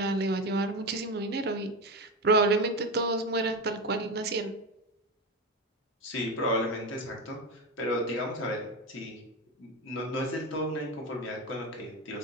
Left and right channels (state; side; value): normal; both; correlation 0.18